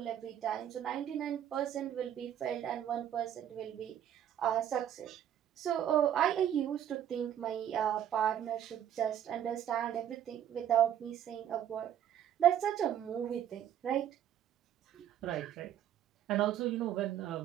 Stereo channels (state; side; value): quieter; left; 10.3 dB